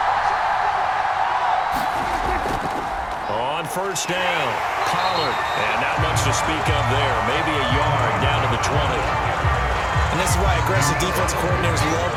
On first down, Pollard. And not much to speak of there. Maybe a yard down to the 20. And this is why aggressive defense coordinators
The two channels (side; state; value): both; identical; correlation 1.00